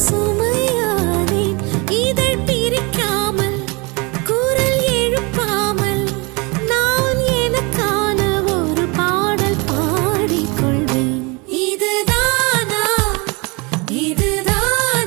சுமையானேன் இதழ் பிரிக்காமல் குரல் எழுப்பாமல் நான் எனக்கான ஒரு பாடல் பாடிக்கொள்வேன் இதுதானா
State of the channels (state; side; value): quieter; left; 28.2 dB